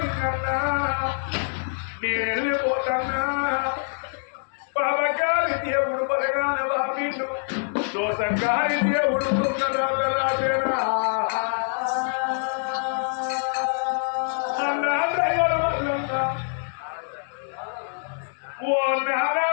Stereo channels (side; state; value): right; silent; digital silence